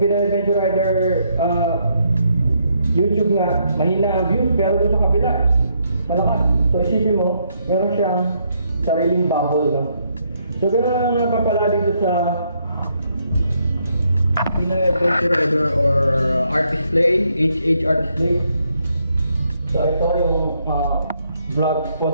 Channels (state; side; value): inverted; both; correlation -0.74